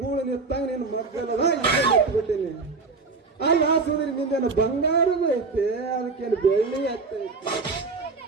ಗೂಳು ನಿತ್ತಾಗ ನಿನ್ನ ಮಕ್ಕಳದ ಬಿಟ್ಟಿನಿ. ಅಲ್ಲ ಸುಂದ್ರಿ ನಿಂದೇನು ಬಂಗಾರದ ಐತೆ, ಅದಕ್ಕೇನು ಬೆಳ್ಳಿ ಐತೆ.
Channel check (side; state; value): left; quieter; 4.1 dB